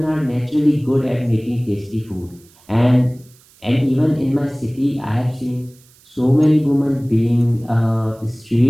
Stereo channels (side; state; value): right; noise; hiss, 29 dB below the sound